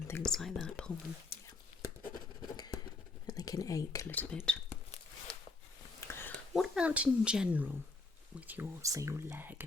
things like that, pull them. Yeah. And they can ache a little bit. What about in general with your, say, your leg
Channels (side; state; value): right; quieter; 3.6 dB